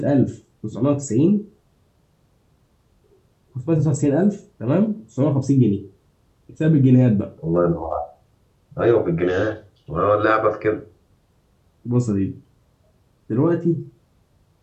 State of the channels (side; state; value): both; identical; correlation 1.00